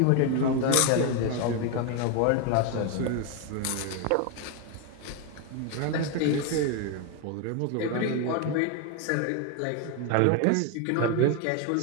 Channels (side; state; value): both; different; correlation 0.01